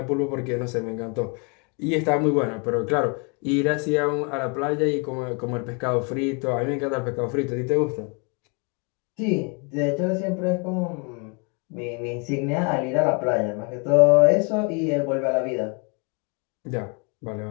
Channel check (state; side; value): quieter; right; 34.4 dB